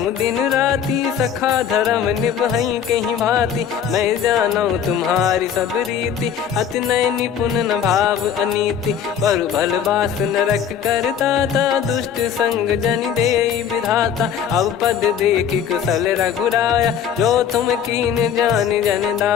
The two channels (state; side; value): quieter; right; 8.4 dB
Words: दिन राती सखा धर्म निभई कहीं भांति मैं जानू तुम्हारी सब रीति अति नय निपुण न भाव अनीति पर भल बास नरक करता था दुष्ट संग जन दे विधाता अब पद देखी कुशल रघुराया जो तुम कीन जान जन